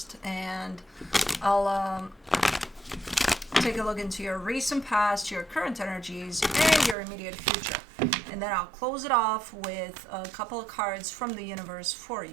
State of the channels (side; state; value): left; drops out; at 7.0 s